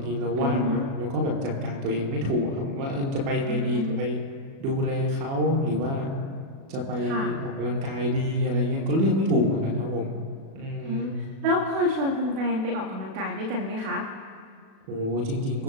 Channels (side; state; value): left; late; 36 ms